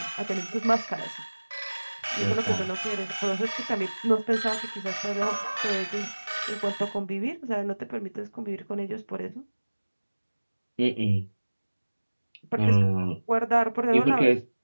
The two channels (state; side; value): inverted; both; correlation -1.00